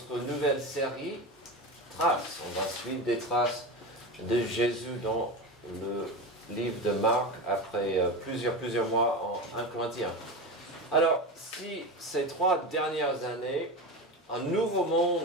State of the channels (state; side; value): normal; both; correlation 0.23